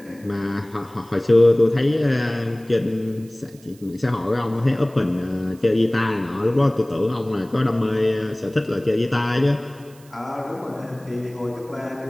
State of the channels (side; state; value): right; noise; hiss, 27 dB below the sound